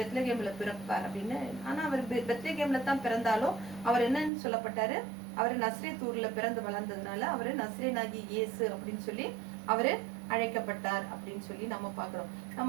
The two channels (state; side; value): drops out; left; at 4.3 s